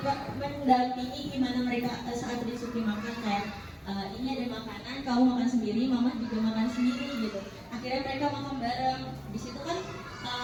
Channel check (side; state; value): both; identical; correlation 1.00